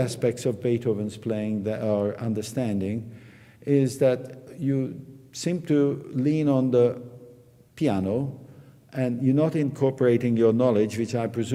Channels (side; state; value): both; identical; correlation 1.00